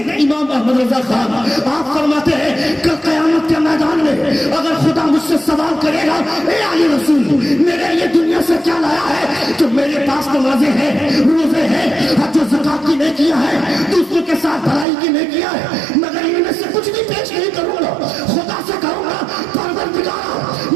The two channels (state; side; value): drops out; left; at 14.9 s